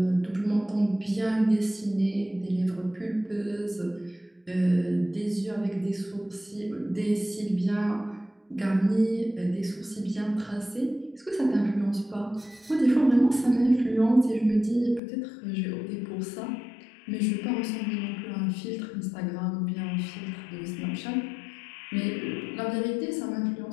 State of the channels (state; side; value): drops out; right; at 15.0 s